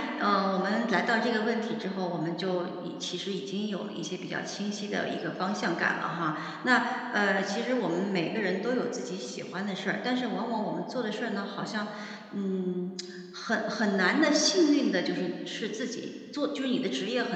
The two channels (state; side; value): identical; both; correlation 1.00